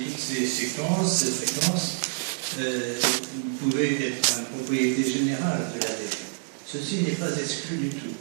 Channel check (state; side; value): silent; left; 60 dB below the other